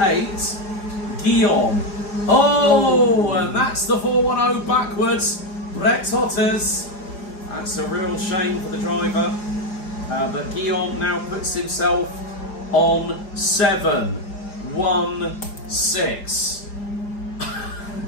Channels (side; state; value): right; late; 4.9 ms